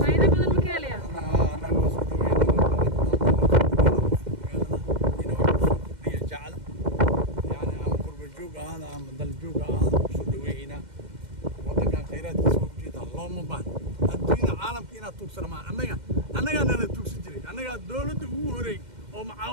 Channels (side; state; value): left; late; 2.1 ms